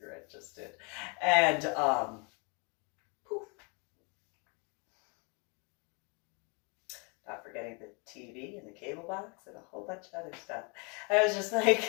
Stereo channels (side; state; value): right; quieter; 33.1 dB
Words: just did. And poof. Not forgetting the TV and the cable box and a whole bunch of other stuff. I was just